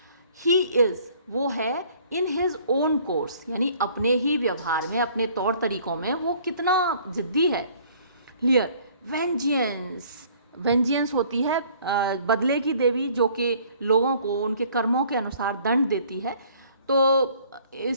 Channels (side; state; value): both; inverted; correlation -0.57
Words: ही इज़, वो है, इन हिज ओन कोर्स, यानी अपने ही व्यवहार में, अपने तौर तरीकों में वो कितना जिद्दी है। लियर वेंजियंस, वेंजियंस होती है बदले की देवी, जो कि लोगों को उनके कर्मों के अनुसार दंड देती है, तो